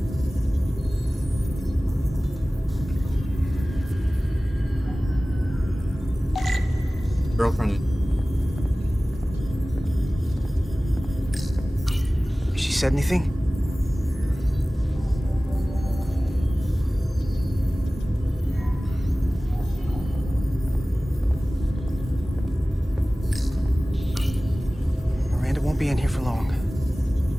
Girlfriend. She said anything? be in here for long.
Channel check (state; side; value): normal; both; correlation 0.97